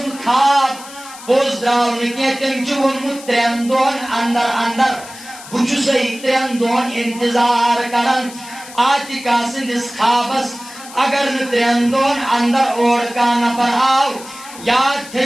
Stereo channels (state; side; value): noise; left; hiss, 16 dB below the sound